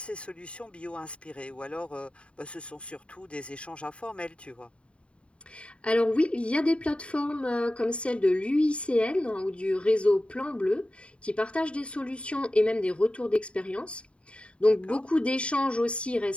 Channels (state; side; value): late; right; 0.059 ms